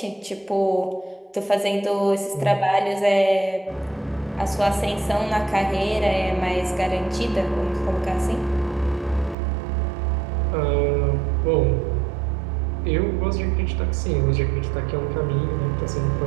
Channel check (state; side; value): drops out; left; at 9.3 s